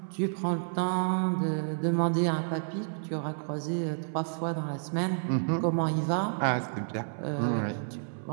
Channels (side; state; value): left; silent; 58 dB below the other